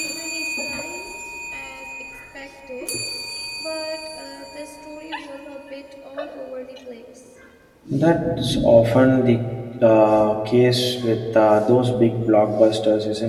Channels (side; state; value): both; identical; correlation 1.00